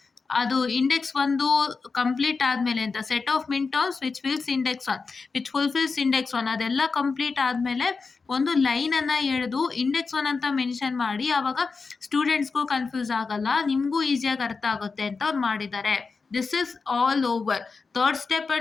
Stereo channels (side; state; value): right; quieter; 4.6 dB